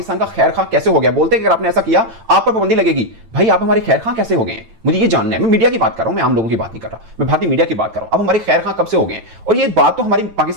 का खैर खां कैसे हो गया? बोलते हैं कि अगर आपने ऐसा किया आप पर पाबंदी लगेगी। भाई आप हमारे खैर खां कैसे हो गए हैं? मुझे ये जानना है। मैं मीडिया की बात कर रहा हूं, मैं आम लोगों की बात नहीं कर रहा, मैं भारतीय मीडिया की बात कर रहा हूं। अब हमारे खैर खां कब से हो गए हैं? और ये बात तो हमारी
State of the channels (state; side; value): late; left; 8.9 ms